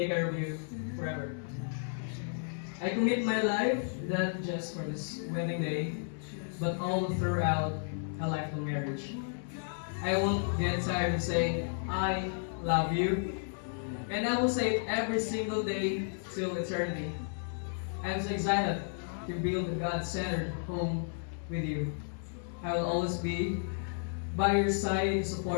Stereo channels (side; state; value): right; silent; digital silence